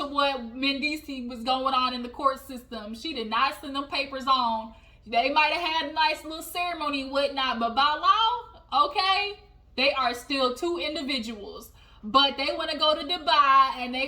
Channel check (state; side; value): identical; both; correlation 1.00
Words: what Mendices was going on in the court system. She did not send them papers on. They might have had a nice little ceremony and whatnot, but by law, okay, they are still two individuals. But they want to go to Dubai and